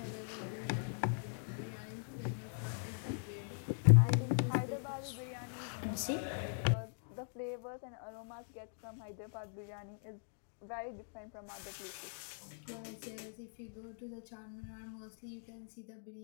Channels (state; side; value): silent; right; digital silence